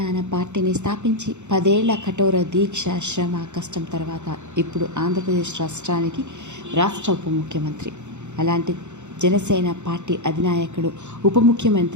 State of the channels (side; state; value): left; late; 0.83 ms